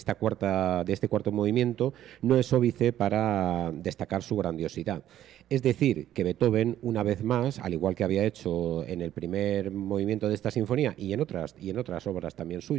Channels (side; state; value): left; quieter; 12.0 dB